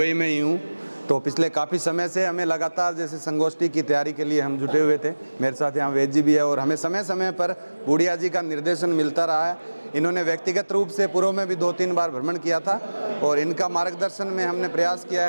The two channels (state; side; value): inverted; both; correlation -1.00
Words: में ही हूँ। तो पिछले काफ़ी समय से हमें लगातार जैसे संगोष्ठी की तैयारी के लिए हम जुटे हुए थे। मेरे साथ यहाँ वेद जी भी है और हमें समय समय पर बूढ़िया जी का निर्देशन मिलता रहा है। इन्होंने व्यक्तिगत रूप से पूर्व में भी 2-3 बार भ्रमण किया था और इनका मार्गदर्शन में हमने प्रयास किया